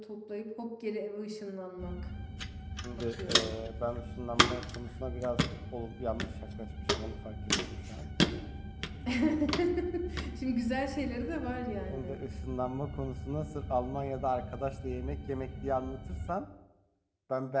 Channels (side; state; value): both; identical; correlation 1.00